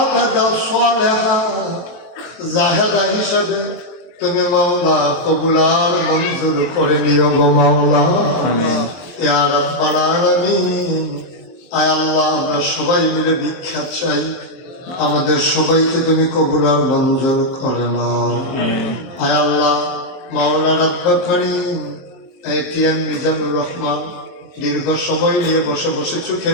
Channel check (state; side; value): late; right; 23 ms